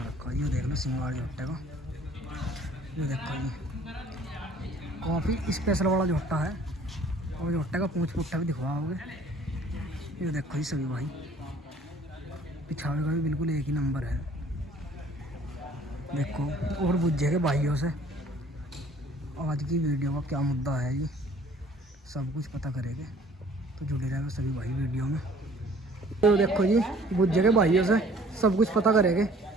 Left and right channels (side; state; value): both; normal; correlation 0.54